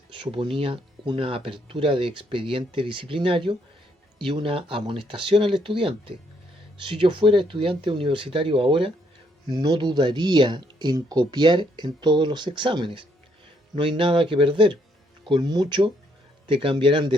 suponía una apertura de expediente disciplinario y una amonestación al estudiante. Si yo fuera estudiante universitario ahora, no dudaría en copiar en todos los exámenes. No hay nada que perder. Con mucho te cambiarán de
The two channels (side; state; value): both; normal; correlation 0.72